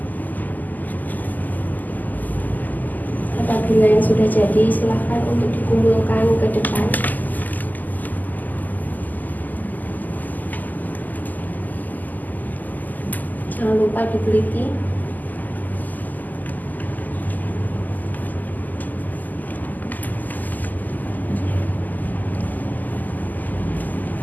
Apabila yang sudah jadi, silahkan untuk dikumpulkan ke depan. Jangan lupa diteliti.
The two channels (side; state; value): right; late; 0.083 ms